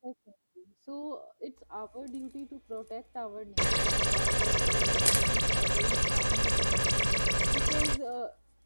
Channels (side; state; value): both; inverted; correlation -1.00